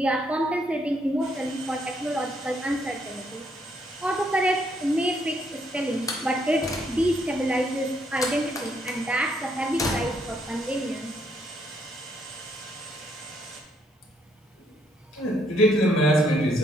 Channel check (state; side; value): normal; both; correlation 0.72